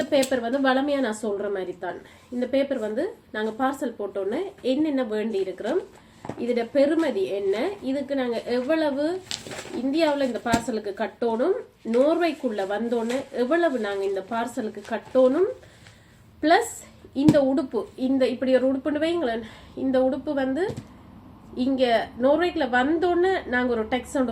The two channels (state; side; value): identical; both; correlation 1.00